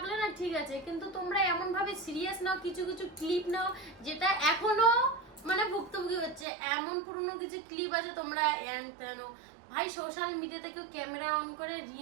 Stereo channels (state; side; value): drops out; left; at 6.5 s